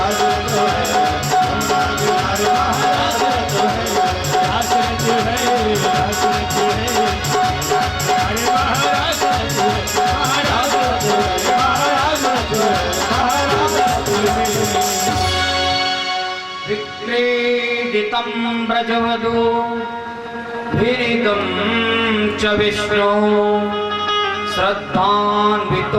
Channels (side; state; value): both; identical; correlation 1.00